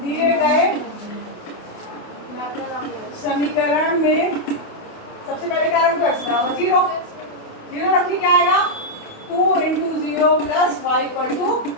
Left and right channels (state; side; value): late; right; 28 ms